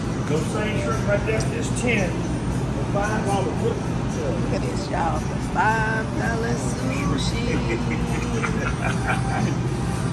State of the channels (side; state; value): both; identical; correlation 1.00